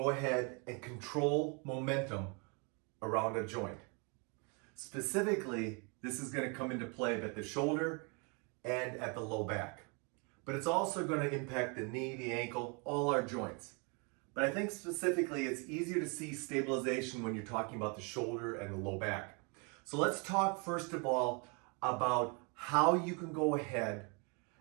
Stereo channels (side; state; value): left; quieter; 33.5 dB